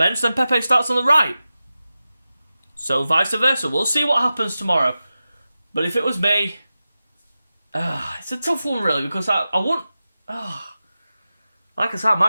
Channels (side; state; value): both; inverted; correlation -0.93